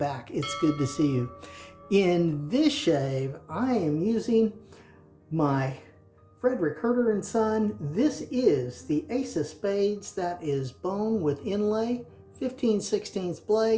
It's good to see you. In this shave, I am using my Friedr & Son. This is the Ace of Spades. That is bone with inlay, 15/16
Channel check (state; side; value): identical; both; correlation 1.00